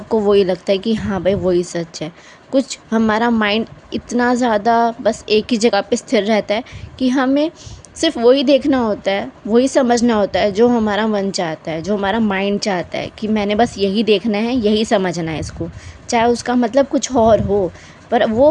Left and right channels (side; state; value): both; identical; correlation 1.00